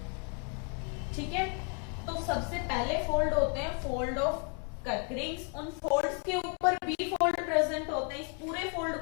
ठीक है, तो सबसे पहले फोल्ड होते हैं फोल्ड ऑफ कर्क रिंग्स, उन फोल्ड्स के ऊपर भी फोल्ड प्रेजेंट होते हैं। इस पूरे फोल्ड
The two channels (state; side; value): quieter; right; 39.9 dB